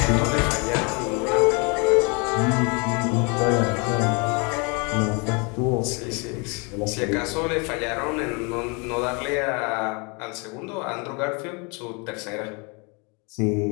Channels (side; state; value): right; quieter; 32.1 dB